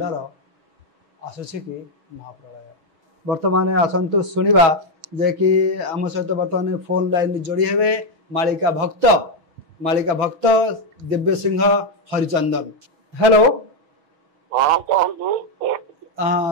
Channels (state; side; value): late; left; 6.2 ms